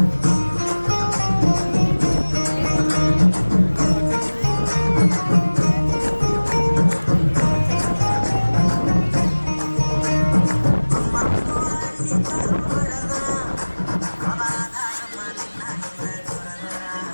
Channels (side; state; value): both; inverted; correlation -1.00